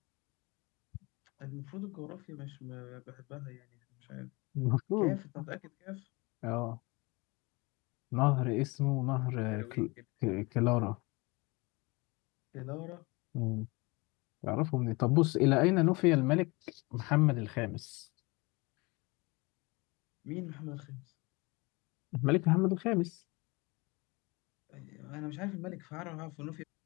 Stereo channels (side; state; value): right; quieter; 25.8 dB